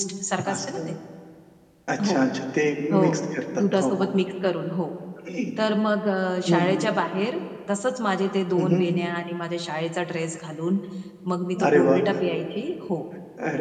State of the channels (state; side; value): identical; both; correlation 1.00